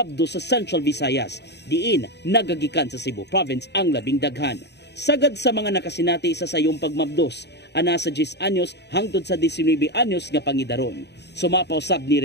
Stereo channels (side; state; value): right; late; 0.50 ms